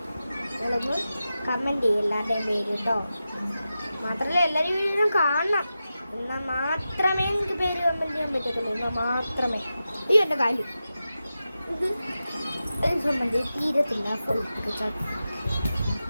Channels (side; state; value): both; inverted; correlation -0.92